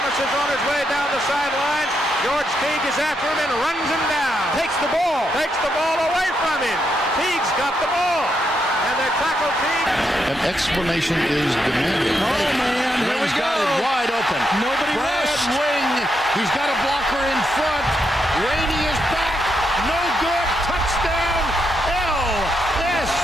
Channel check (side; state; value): both; normal; correlation 0.81